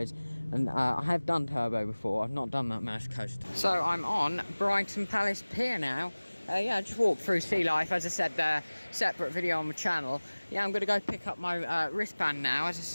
And I have done Turbo before, I've not done that mouse coaster. So I'm on Brighton Palace Pier now. Yeah, I just walked through Sealife, as I said there, separate video on my channel. Yeah, I'm going to go pick up my wristband now. As I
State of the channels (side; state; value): both; inverted; correlation -1.00